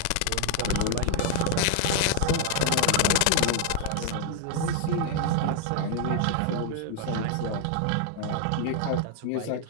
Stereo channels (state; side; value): different; both; correlation 0.00